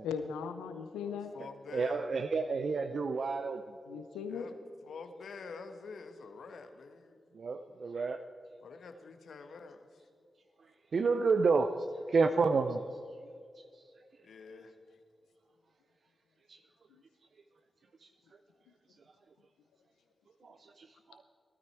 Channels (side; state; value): left; quieter; 3.3 dB